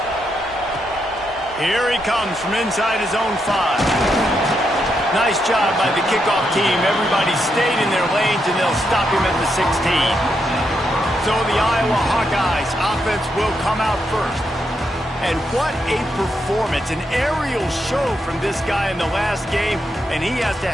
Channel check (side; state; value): both; normal; correlation 0.81